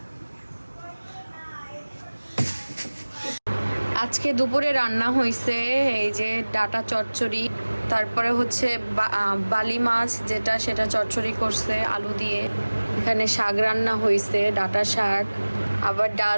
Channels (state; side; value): inverted; both; correlation -1.00